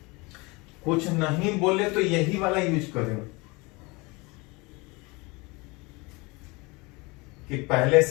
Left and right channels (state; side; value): quieter; right; 26.0 dB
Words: कुछ नहीं बोले तो यही वाला यूज करें कि पहले